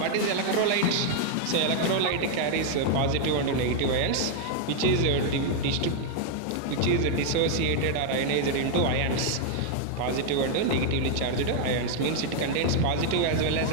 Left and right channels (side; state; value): both; different; correlation 0.00